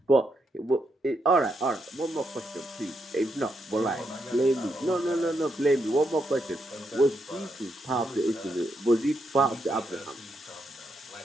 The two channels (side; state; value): both; normal; correlation 0.80